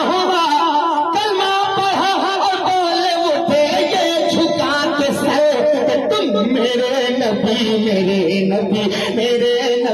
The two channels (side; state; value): both; identical; correlation 1.00